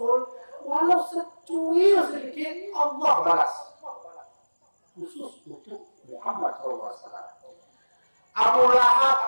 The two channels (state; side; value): inverted; both; correlation -1.00